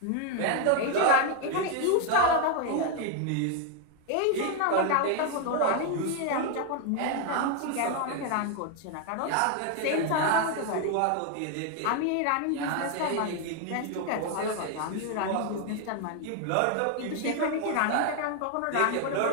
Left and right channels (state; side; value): different; both; correlation 0.01